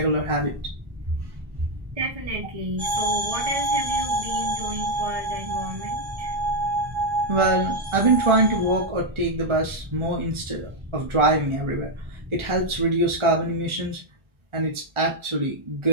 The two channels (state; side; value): late; left; 1.4 ms